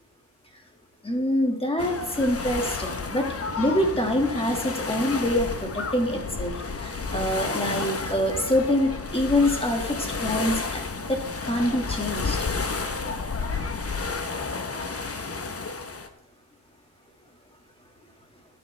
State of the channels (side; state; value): both; normal; correlation 0.47